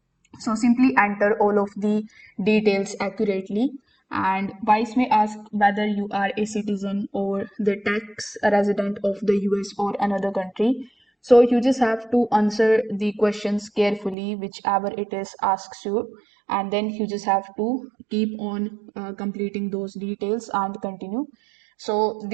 So simply enter all of the details accurately. And Wise may ask whether you are a citizen or the tax resident of the US or another country. So you just have to answer the questions carefully, whichever it is asks you, and then you just have to keep on completing those details and continue. So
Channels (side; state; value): left; drops out; at 14.2 s